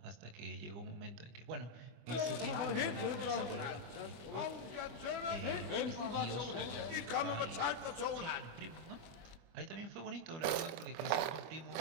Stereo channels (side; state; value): left; late; 25 ms